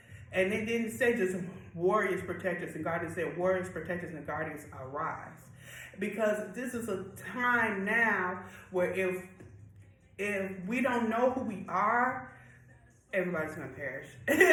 And it didn't say just warriors, protectors, and guardians. It said warriors, protectors, and guardians arise. Because this is a time now where if we don't know who we are, everybody's gonna perish.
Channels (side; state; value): both; identical; correlation 1.00